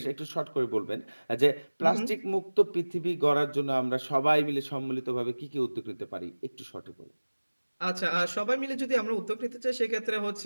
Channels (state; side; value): inverted; both; correlation -1.00